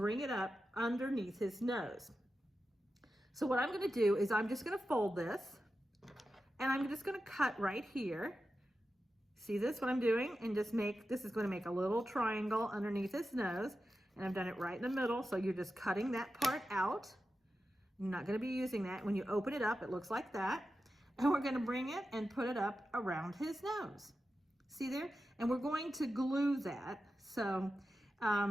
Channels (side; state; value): both; normal; correlation 0.91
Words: it up underneath his nose. So what I'm going to do is I'm just going to fold this, and I'm just going to cut right here. See this, what I'm doing? And just this is going to make a little triangle underneath his nose. And I've done it right in the middle, so you're just cutting that part out. You're not going to be using that. When you open it up, it looks like that. And we're going to bring it and put it up around his nose. See there? And we're going to glue that. So